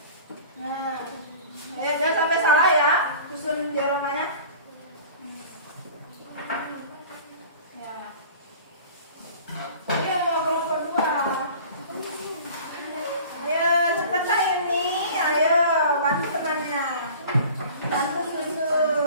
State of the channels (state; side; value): inverted; both; correlation -0.43